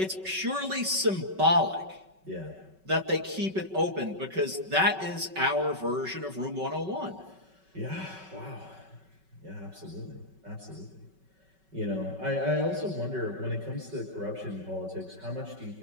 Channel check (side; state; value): left; late; 5.3 ms